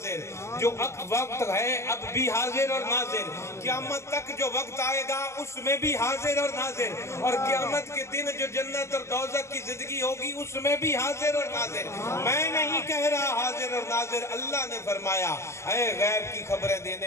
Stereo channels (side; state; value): right; late; 0.13 ms